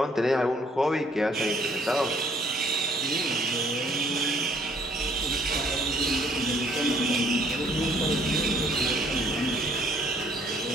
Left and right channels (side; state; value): both; normal; correlation 0.61